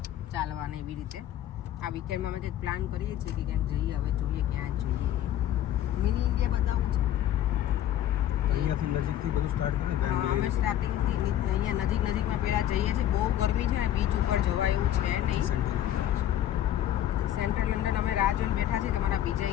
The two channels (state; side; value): quieter; right; 11.8 dB